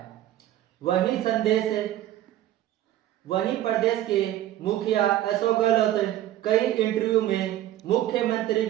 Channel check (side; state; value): left; quieter; 13.3 dB